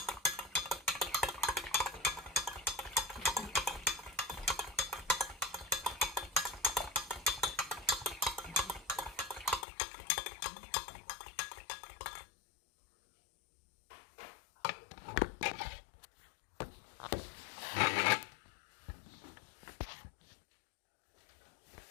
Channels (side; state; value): right; drops out; at 9.7 s